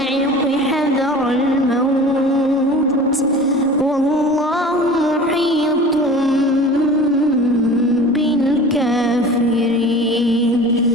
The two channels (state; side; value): normal; both; correlation 0.40